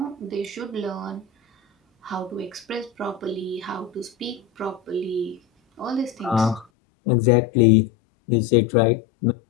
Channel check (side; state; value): right; drops out; at 6.7 s